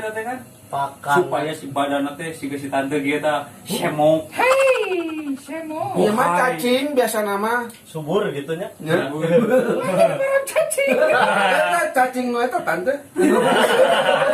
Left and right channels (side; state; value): both; identical; correlation 1.00